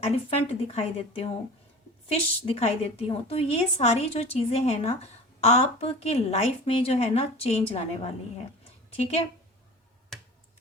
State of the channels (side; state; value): both; normal; correlation 0.37